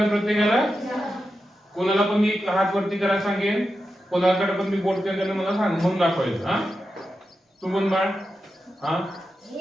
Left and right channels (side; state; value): both; normal; correlation 0.89